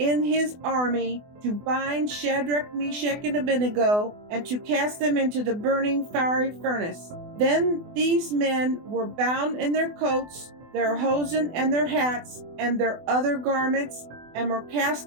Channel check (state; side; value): late; left; 24 ms